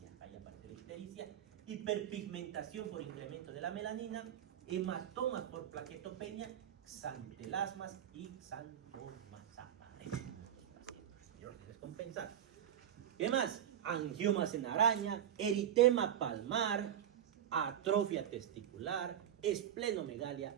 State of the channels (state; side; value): quieter; left; 10.0 dB